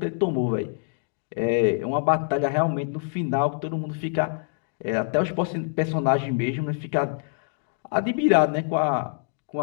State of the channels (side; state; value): right; silent; digital silence